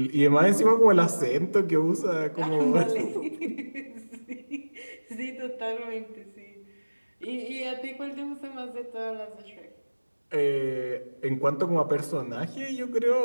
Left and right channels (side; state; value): both; inverted; correlation -1.00